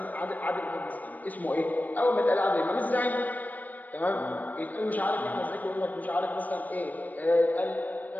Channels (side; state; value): right; late; 0.081 ms